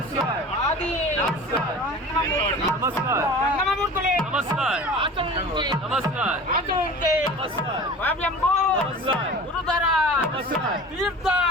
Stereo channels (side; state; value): both; normal; correlation 0.38